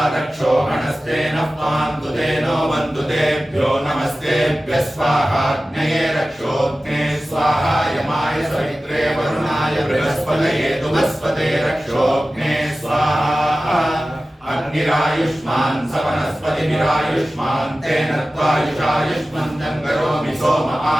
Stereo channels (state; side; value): normal; both; correlation 0.96